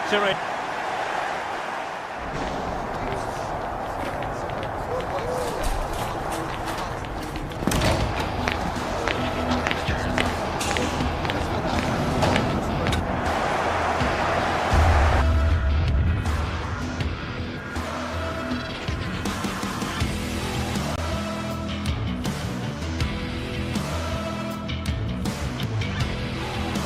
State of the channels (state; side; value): identical; both; correlation 1.00